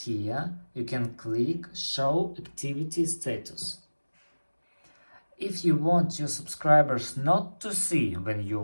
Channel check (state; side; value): inverted; both; correlation -1.00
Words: you can click Show Activity Status. If you want your subscribers not to see when